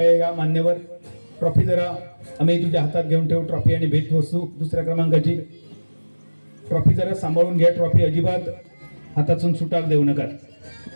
या मान्यवर. ट्रॉफी जरा आम्ही तुझ्या हातात घेऊन ठेवू, ट्रॉफी आणि भेटवस्तू. दुसऱ्या क्रमांकाची ट्रॉफी जरा सांभाळून घ्या, ट्रॉफी अजिबात हातातून सुटाक देऊ नका.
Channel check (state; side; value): inverted; both; correlation -1.00